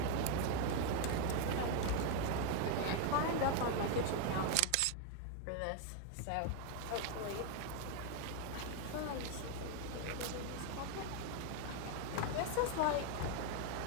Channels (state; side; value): different; both; correlation 0.01